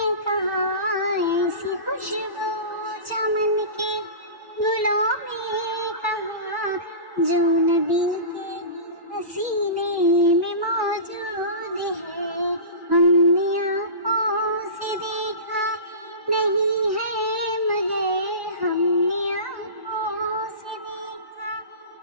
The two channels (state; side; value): late; left; 1.1 ms